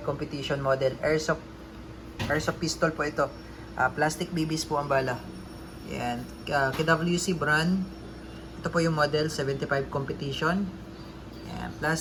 competition model airsoft pistol po ito. Plastic BBs po ang bala. Yan, KWC brand. Ito po yung model 75 competition. Yan,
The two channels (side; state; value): both; identical; correlation 1.00